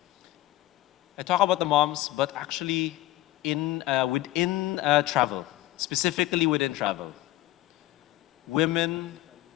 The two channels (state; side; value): quieter; right; 16.3 dB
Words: I talk about the moms, but actually within travel, specifically within travel, women